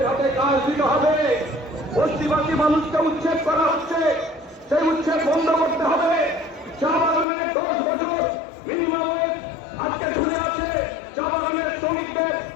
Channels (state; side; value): drops out; right; at 7.2 s